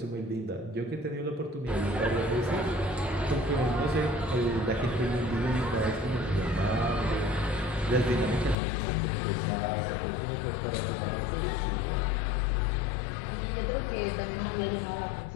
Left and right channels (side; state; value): right; drops out; at 8.6 s